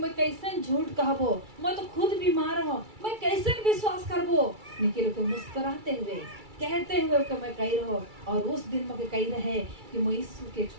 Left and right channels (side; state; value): left; late; 2.3 ms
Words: कैसे झूठ कहबो मैं तो खुद बीमार हूँ मैं कैसे विश्वास करबो लेकिन को मुस्कुराते हुए कहते हुए कि मैं कही रहो और उस दिन मुझे कही रहे कि मैं यीशु के